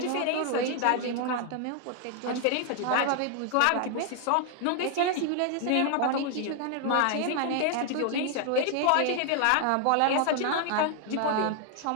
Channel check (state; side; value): different; both; correlation 0.00